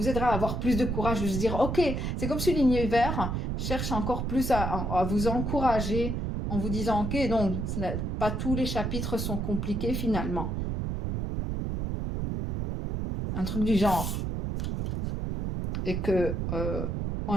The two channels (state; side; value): noise; right; rumble, 2 dB below the sound